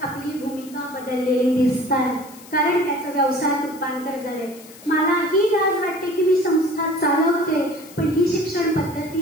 आपली भूमिका बदललेली दिसतात, कारण त्याचं व्यवसायात रूपांतर झालंय. मला ही लाज वाटते की मी संस्था चालवते, पण ही शिक्षण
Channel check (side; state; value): left; noise; hiss, 20 dB below the sound